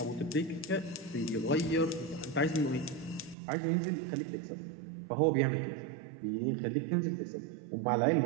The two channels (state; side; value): drops out; left; at 3.4 s